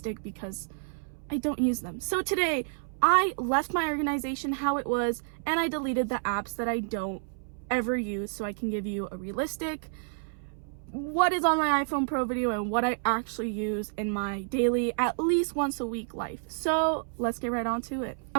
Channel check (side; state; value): left; silent; 58 dB below the other